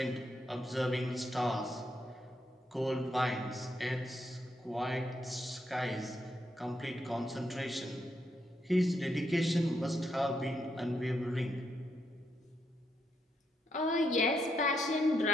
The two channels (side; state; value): both; normal; correlation 0.79